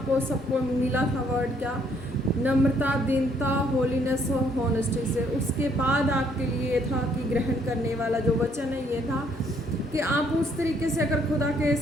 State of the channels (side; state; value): both; normal; correlation 0.67